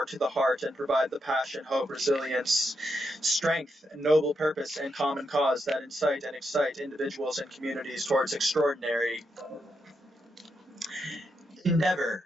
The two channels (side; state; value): both; normal; correlation 0.82